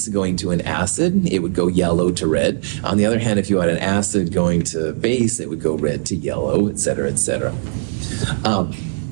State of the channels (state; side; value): silent; left; digital silence